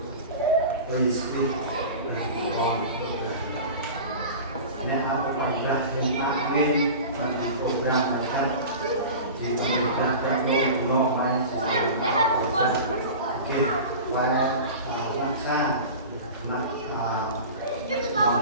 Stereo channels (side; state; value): both; inverted; correlation -0.34